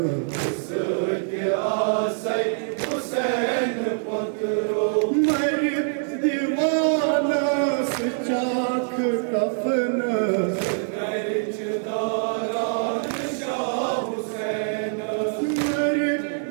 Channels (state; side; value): silent; left; 62 dB below the other